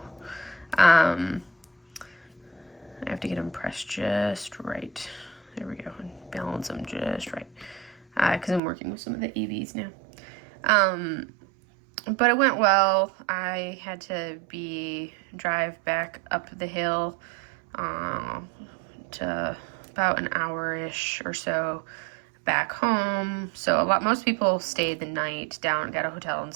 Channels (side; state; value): left; drops out; at 8.6 s